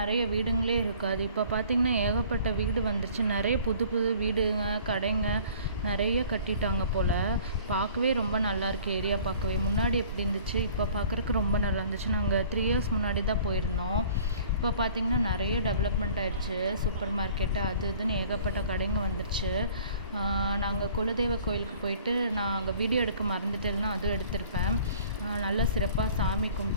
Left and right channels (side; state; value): both; inverted; correlation -0.51